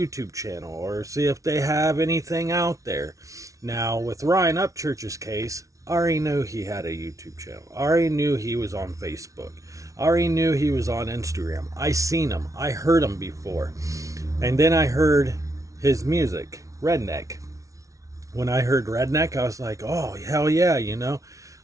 channel or see if they have anything out there. Now with RyanUpchurch's case, I already knew he had a YouTube channel. I already knew he was on Facebook. I already knew he was on Instagram. I seen him. I heard him before. And then I heard his music, Redneck. When I heard Redneck, I was like, oh, hell yeah,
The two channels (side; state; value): left; late; 0.16 ms